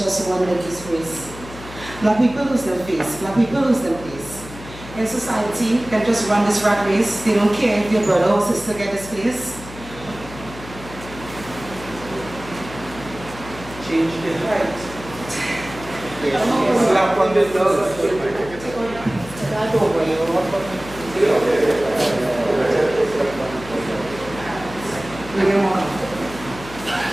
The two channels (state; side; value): noise; left; hum, 15 dB below the sound